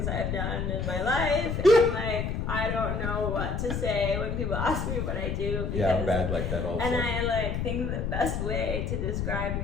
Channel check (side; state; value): left; noise; rumble, 2 dB below the sound